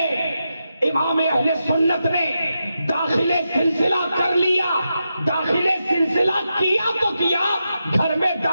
امام اہل سنت نے داخل سلسلہ کر لیا۔ داخل سلسلہ کیا تو کیا، گھر میں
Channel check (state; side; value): inverted; both; correlation -0.87